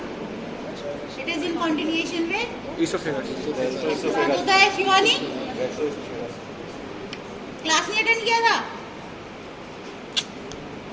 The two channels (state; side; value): identical; both; correlation 1.00